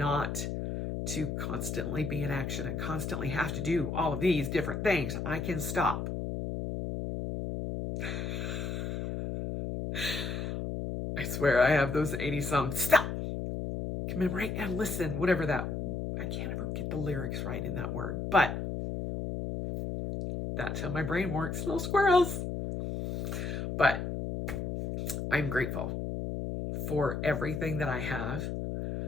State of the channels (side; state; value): left; noise; hum, 3 dB below the sound